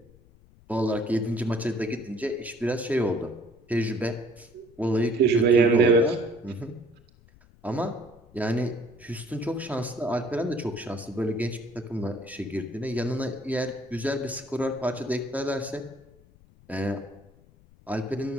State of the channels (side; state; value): left; noise; rumble, 26 dB below the sound